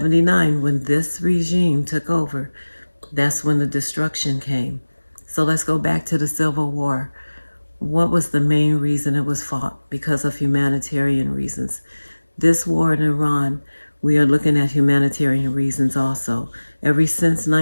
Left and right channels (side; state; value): both; inverted; correlation -1.00